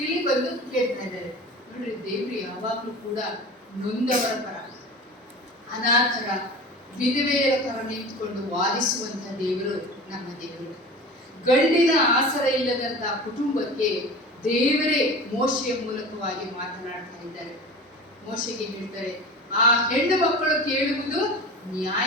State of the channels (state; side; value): normal; both; correlation 0.35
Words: ಇಲ್ಲಿ ಬಂದು ಕೇಳ್ತಾ ಇದ್ದಾರೆ. ನೋಡ್ರಿ, ದೇವ್ರು ಯಾವಾಗ್ಲೂ ಕೂಡ ನೊಂದವರ ಪರ, ಅನಾಥರ, ವಿಧವೆಯರ ಪರ ನಿಂತುಕೊಂಡು ವಾದಿಸುವಂತ ದೇವರು ನಮ್ಮ ದೇವರು. ಗಂಡಿನ ಆಸರ ಇಲ್ಲದಂತ ಕುಟುಂಬಕ್ಕೆ ದೇವರೇ ಮೋಶೆಯ ಮೂಲಕವಾಗಿ ಮಾತನಾಡ್ತಾ ಇದ್ದಾರೆ. ಮೋಶೆಗೆ ಹೇಳ್ತಾರೆ, ಆ ಹೆಣ್ಣು ಮಕ್ಕಳು ಕೇಳುವುದು